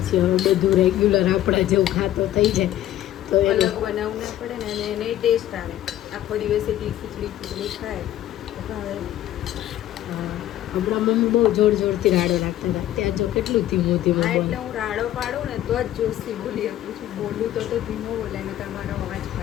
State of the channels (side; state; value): right; quieter; 13.0 dB